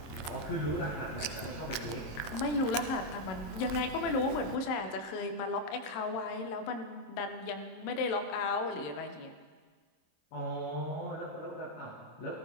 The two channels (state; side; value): late; right; 26 ms